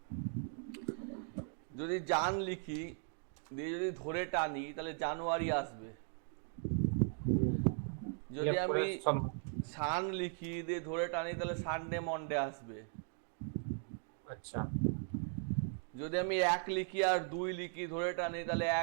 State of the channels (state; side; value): silent; left; 52 dB below the other